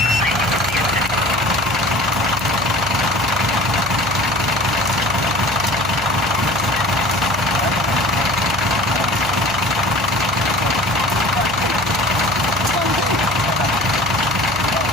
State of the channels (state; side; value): noise; left; hum, 16 dB below the sound